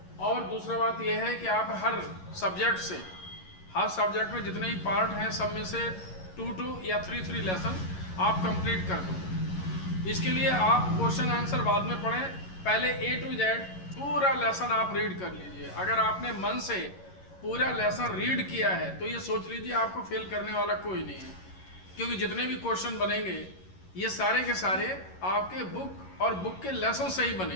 और दूसरा बात यह है कि आप हर सब्जेक्ट में जितने भी पार्ट हैं सब में से 2 या 3 लेसन आप कंप्लीट कर दो। इसके लिए आप क्वेश्चन आंसर बाद में पढ़ें, पहले A to Z पूरा लेसन आप रीड कर लीजिए। अगर आपने मन से पूरा लेसन रीड किया है तो ये सोच लीजिए आपको फेल करने वाला कोई नहीं है, क्योंकि जितने भी क्वेश्चन बनेंगे ये सारे के सारे आपके बुक और बुक के लेसन से ही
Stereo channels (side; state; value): right; late; 11 ms